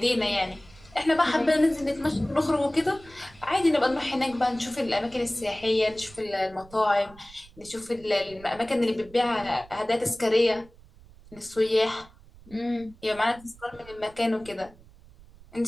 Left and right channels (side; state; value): right; noise; rumble, 23 dB below the sound